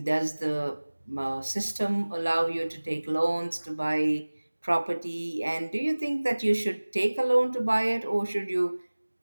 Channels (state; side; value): inverted; both; correlation -1.00